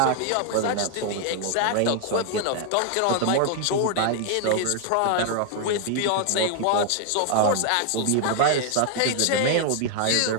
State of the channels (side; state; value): both; different; correlation 0.00